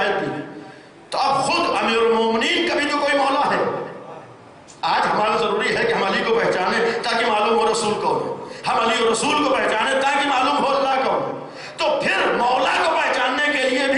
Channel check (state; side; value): identical; both; correlation 1.00